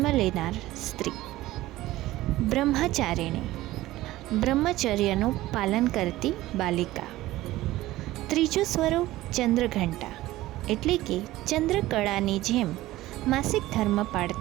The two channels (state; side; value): quieter; left; 16.7 dB